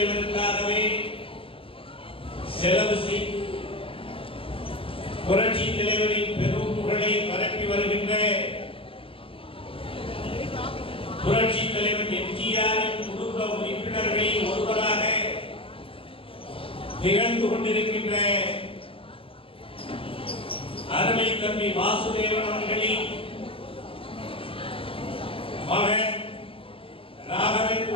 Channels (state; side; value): late; right; 0.26 ms